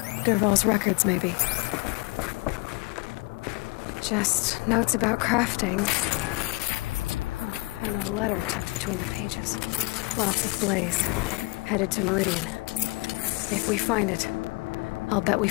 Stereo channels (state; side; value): quieter; right; 23.6 dB